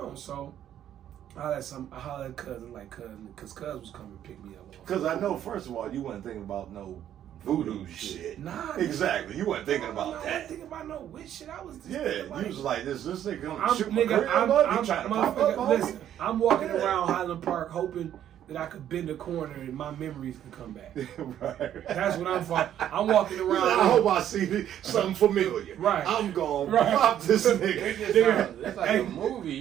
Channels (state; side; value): quieter; left; 10.8 dB